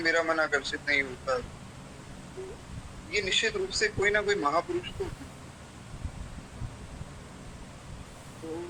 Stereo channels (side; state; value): both; identical; correlation 1.00